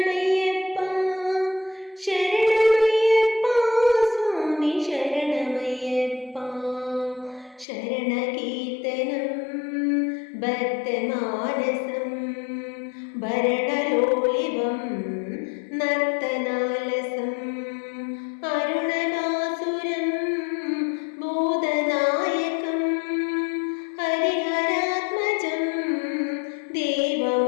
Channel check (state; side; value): drops out; right; at 7.7 s